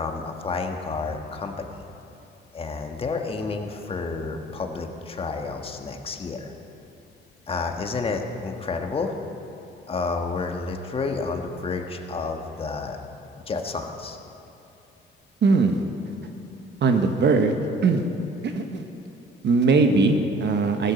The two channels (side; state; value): both; normal; correlation 0.51